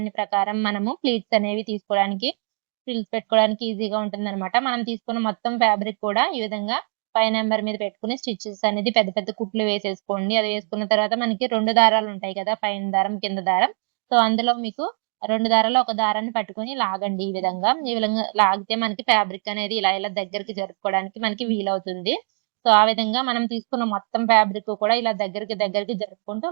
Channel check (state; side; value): quieter; left; 39.6 dB